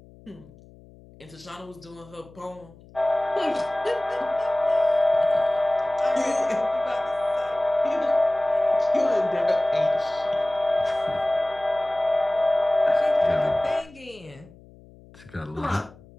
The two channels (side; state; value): left; noise; hum, 23 dB below the sound